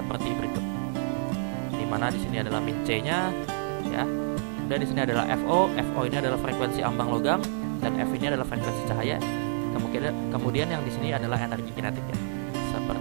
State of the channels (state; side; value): silent; left; 59 dB below the other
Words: berikut. Di mana di sini adalah min C-nya ya. Dan di sini adalah FO. FO ini adalah frekuensi ambang logam dan F ini adalah frekuensi cahaya. Kemudian yang di sini adalah energi kinetik ya.